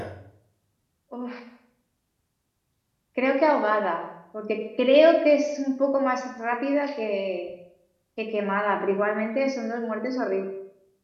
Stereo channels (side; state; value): both; identical; correlation 1.00